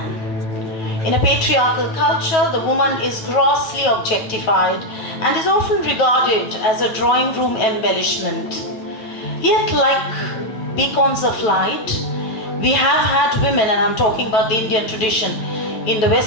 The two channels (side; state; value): right; late; 9.0 ms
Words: In a patriarchal culture, the woman is grossly objectified and is often regarded as a drawing room embellishment. Yet, like beacons of light, we have had women, and I'm talking about the Indian tradition. In the